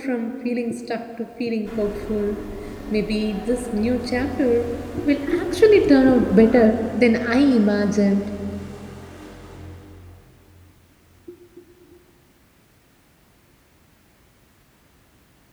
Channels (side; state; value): both; identical; correlation 1.00